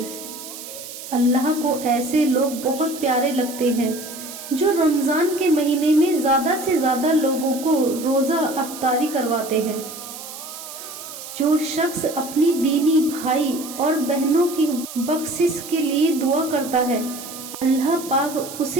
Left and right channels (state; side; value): noise; right; hiss, 12 dB below the sound